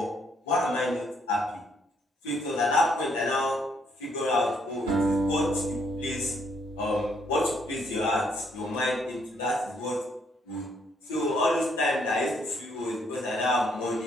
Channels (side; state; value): both; normal; correlation 0.70